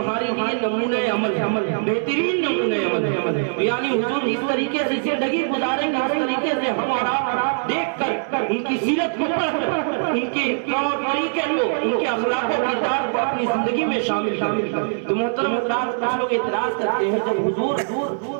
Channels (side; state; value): left; silent; digital silence